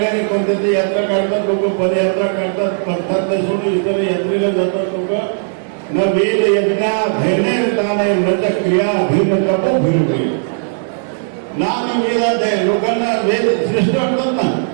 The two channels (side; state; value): left; silent; digital silence